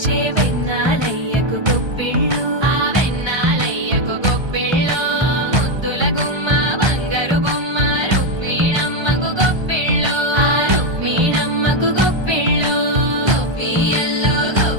వెన్నాలయ్యకు గొప్పిళ్ళు ఆ వెన్నాలయ్యకు గొప్పిళ్ళు ముద్దుల గుమ్మ బంగారు బొమ్మ రుక్మిణమ్మకు గొప్పిళ్ళు ఆ రుక్మిణమ్మకు గొప్పిళ్ళు గొప్పియల్లో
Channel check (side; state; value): left; late; 1.3 ms